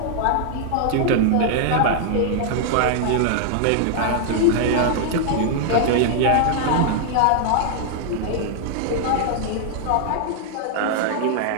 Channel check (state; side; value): different; both; correlation -0.01